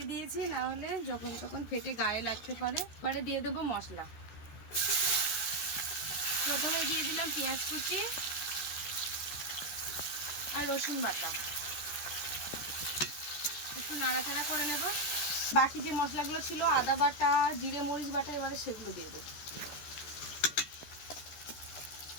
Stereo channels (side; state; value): right; late; 14 ms